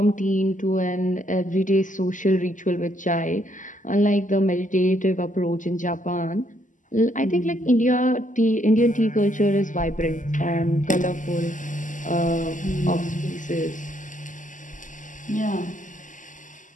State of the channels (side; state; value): right; late; 0.37 ms